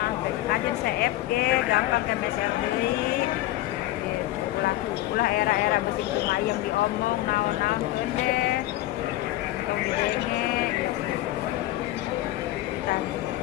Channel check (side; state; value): right; quieter; 15.8 dB